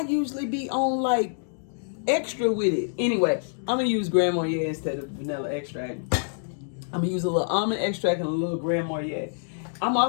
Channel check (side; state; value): right; silent; digital silence